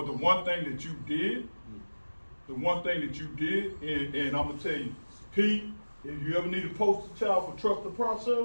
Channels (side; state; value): both; inverted; correlation -1.00